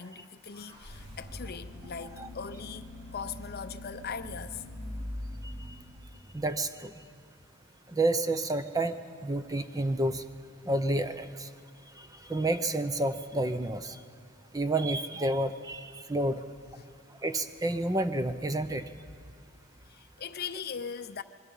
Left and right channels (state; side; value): normal; both; correlation 0.60